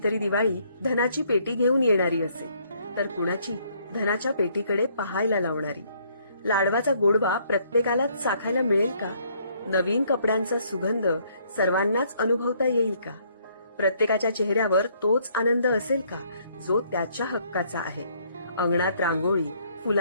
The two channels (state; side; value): inverted; both; correlation -0.66